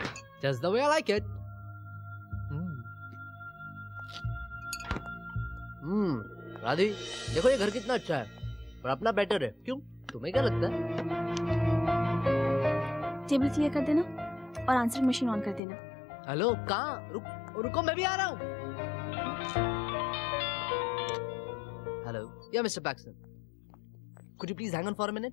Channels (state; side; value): drops out; right; at 15.6 s